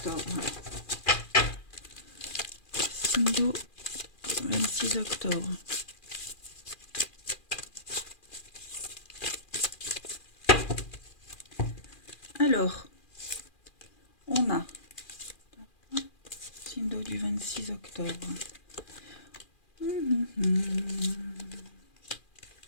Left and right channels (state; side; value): late; right; 2.4 ms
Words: Signe d'eau 26 octobre. Alors, on a signe d'eau du 26 octobre.